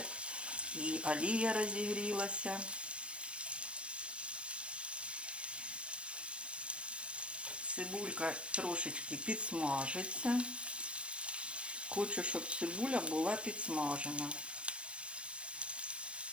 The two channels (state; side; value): late; left; 0.059 ms